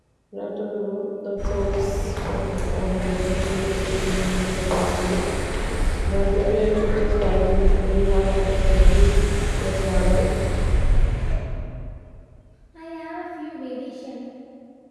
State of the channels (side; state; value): both; identical; correlation 1.00